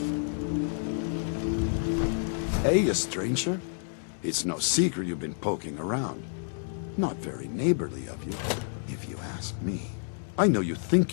Hey, a stranger. It's no secret you've been poking around. Not very neighborly of you, if you ask me. I know you think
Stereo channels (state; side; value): silent; right; digital silence